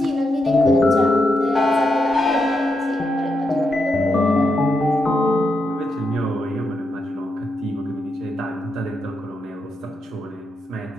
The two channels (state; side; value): normal; both; correlation 0.83